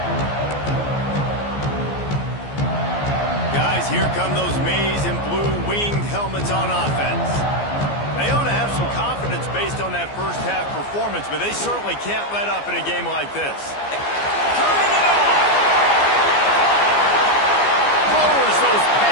Guys, here come those maize and blue winged helmets on offense. They ought to have some confidence based on that first half performance, but they certainly can't let up in a game like this. Coming it on! Lowers those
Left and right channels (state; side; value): late; right; 14 ms